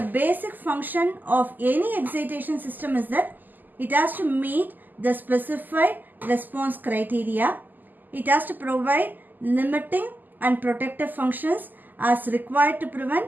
basic function of any excitation system is that it has to meet the specified response criteria. It has to provide limiting and protective functions as required to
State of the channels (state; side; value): late; left; 0.086 ms